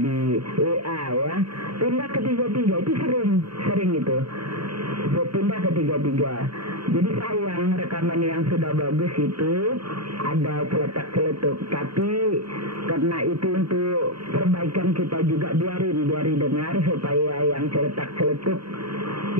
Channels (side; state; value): left; late; 0.74 ms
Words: WA ya. Pindah ketiga-tiga, itu sering itu. Pindah ketiga-tiga. Jadi sayang rekaman yang sudah bagus itu ada celetak-celetuk. Tapi karena itu untuk perbaikan kita juga biarin dengar supaya yang celetak-celetuk